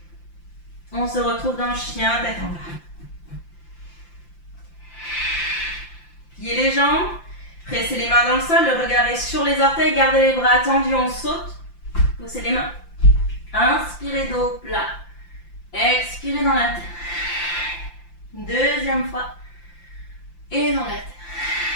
On se retrouve dans le chien, tête en bas. Pliez les jambes, pressez les mains dans le sol, le regard est sur les orteils, gardez les bras tendus, on saute. Poussez les mains. Inspirez dos plat. Expirez dans la terre. Deuxième fois. Et dans la terre.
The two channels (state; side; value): late; right; 5.8 ms